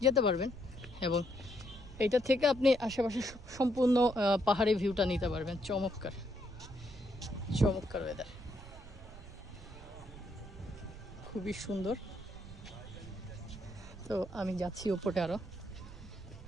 যেতে পারবেন, এবং এটা থেকে আপনি আশেপাশে সম্পূর্ণ পাহাড়ি ভিউটা নিতে পারবেন। চমৎকার চমৎকার ওয়েদার, খুবই সুন্দর। তো আমি যাচ্ছি উপরে,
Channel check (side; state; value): right; noise; rumble, 16 dB below the sound